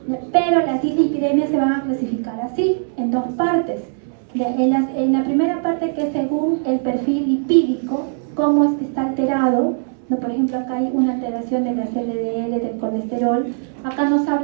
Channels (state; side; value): silent; left; 66 dB below the other